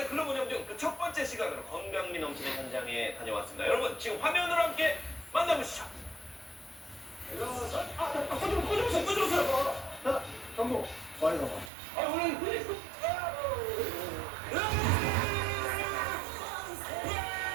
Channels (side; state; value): left; drops out; at 11.7 s